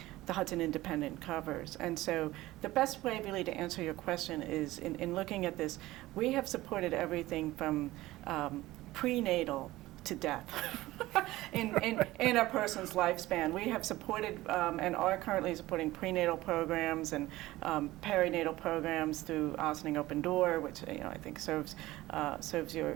the Hudson Independent covers. And so the best way really to answer your question is in looking at this, we have supported everything from prenatal to death. in a person's lifespan. We have supported and are currently supporting prenatal programs and perinatal programs through Ossining Open Door, which I think serves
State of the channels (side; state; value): left; quieter; 17.5 dB